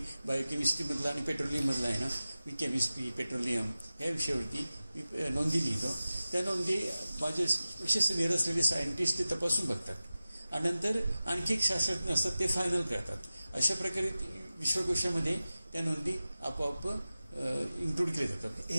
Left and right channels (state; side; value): inverted; both; correlation -0.96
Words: बायोकेमिस्ट्रीमधला आणि पेट्रोलियममधला आहे ना, मी केमिस्ट्री पेट्रोलियम ह्या विषयावरती मी नोंदी लिहितो. त्या नोंदी माझे विशेष निर असलेले सायंटिस्ट ते तपासून बघतात आणि नंतर आणखी एक शास्त्रज्ञ असतात ते फायनल करतात. अशा प्रकारे विश्वकोशामध्ये त्या नोंदी आपोआप इन्क्लूड केले जातात.